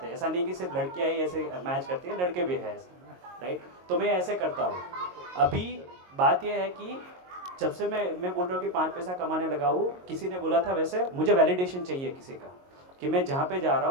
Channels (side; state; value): left; late; 22 ms